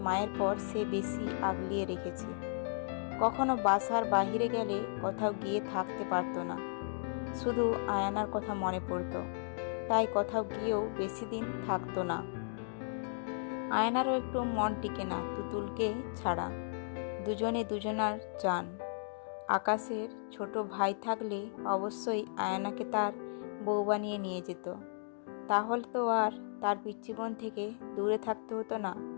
মায়ের পর সে বেশি আগলিয়ে রেখেছে। কখনো বাসার বাহিরে গেলে কোথাও গিয়ে থাকতে পারতো না। শুধু আয়ানার কথা মনে পড়তো, তাই কোথাও গিয়েও বেশি দিন থাকতো না। আয়নারও একটু মন টিকে না তুতুলকে ছাড়া। দুজনে দুজনার চান। আকাশের ছোট ভাই থাকলে অবশ্যই আয়নাকে তার বউ বানিয়ে নিয়ে যেত। তাহলে তো আর তার পিচ্চি বোন থেকে দূরে থাকতে হতো না।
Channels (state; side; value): silent; right; digital silence